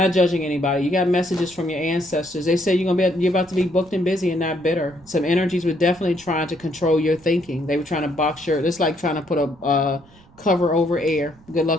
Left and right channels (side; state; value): right; noise; rumble, 26 dB below the sound